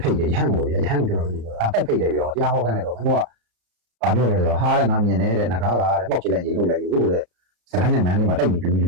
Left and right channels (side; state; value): left; late; 34 ms